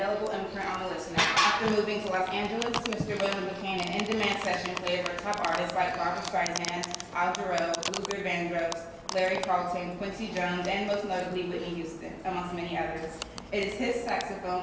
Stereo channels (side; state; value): both; identical; correlation 1.00